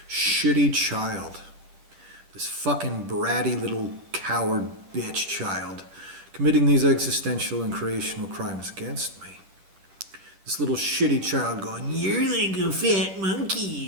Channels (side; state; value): left; late; 10 ms